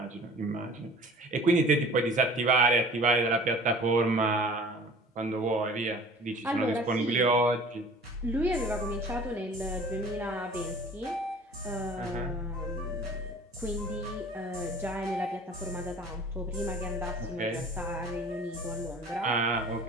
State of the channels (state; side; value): normal; both; correlation 0.46